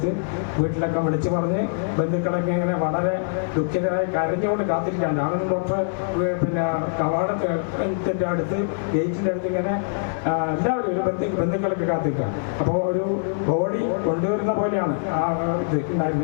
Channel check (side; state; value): right; silent; 57 dB below the other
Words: വീട്ടിലൊക്കെ വിളിച്ച് പറഞ്ഞ് ബന്ധുക്കളൊക്കെ ഇങ്ങനെ വളരെ ദുഃഖിതരായി കരഞ്ഞുകൊണ്ട് കാത്തിരിക്കാൻ. രാമേന്ദ്രൻ ഡോക്ടർ പിന്നെ കവാടത്തിൻ്റെ അടുത്ത് ഗേറ്റിൻ്റെ അടുത്ത് ഇങ്ങനെ എല്ലാവരും ഒരു ബന്ധുക്കളൊക്കെ കാത്തിരിക്കുക. അപ്പോൾ ഒരു ബോഡി കൊണ്ടുവരുന്ന പോലെയാണ് ആ ഇത്